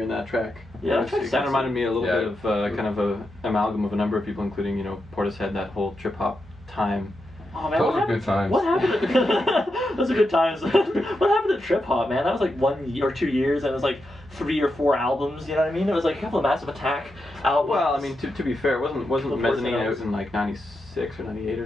in that track. Yeah, it kind of reminded me a little bit of kind of a amalgam of a number of people, including Portishead, that whole trip hop time. Oh man, those are good times. What happened? Those are good times. What happened to trip hop, man? That was like 1 or 2 years, and it was like 3 or 4 albums. You know what I mean? It was like a couple of Massive Attack albums. Well, I mean, to be fair, wasn't Mezzanine out in like '96 or '98 or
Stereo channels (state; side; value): normal; both; correlation 0.86